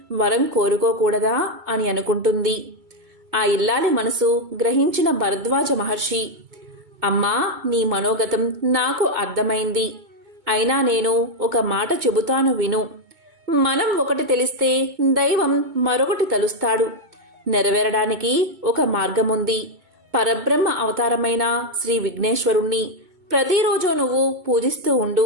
వరం కోరుకోకూడదా అని అనుకుంటుంది. ఆ ఇల్లాలి మనసు గ్రహించిన భరద్వాజ మహర్షి అమ్మా, నీ మనోగతం నాకు అర్థమైంది. అయినా నేను ఒక మాట చెబుతాను విను. మనం ఒకటి తెలిస్తే దైవం మరొకటి తలుస్తాడు. నెరవేరడానికి ఒక మార్గముంది. పరబ్రహ్మ అవతారమైన శ్రీ విఘ్నేశ్వరుణ్ణి ప్రతిరోజు నువ్వు పూజిస్తూ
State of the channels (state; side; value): late; left; 2.2 ms